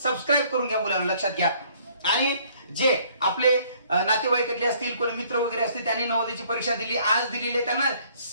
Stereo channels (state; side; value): inverted; both; correlation -0.61